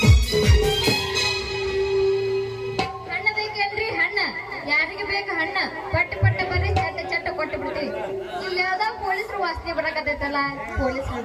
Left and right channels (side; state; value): both; identical; correlation 1.00